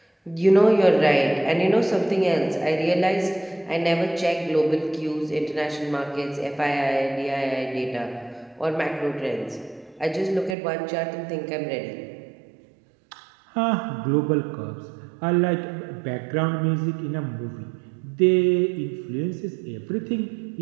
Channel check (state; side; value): drops out; left; at 10.6 s